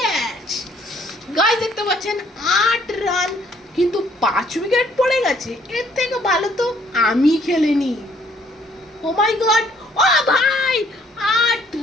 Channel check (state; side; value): normal; both; correlation 0.63